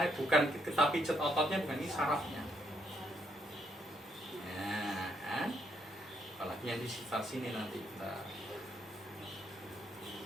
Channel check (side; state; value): both; normal; correlation 0.74